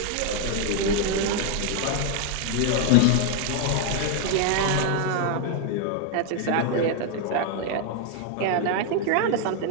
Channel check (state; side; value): different; both; correlation 0.00